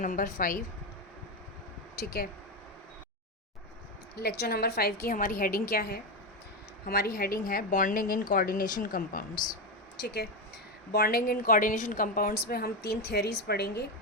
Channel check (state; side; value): normal; both; correlation 0.12